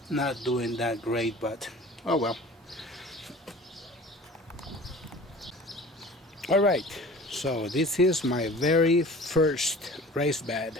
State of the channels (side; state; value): both; normal; correlation 0.43